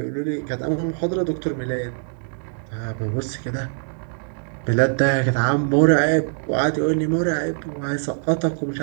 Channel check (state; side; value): silent; left; digital silence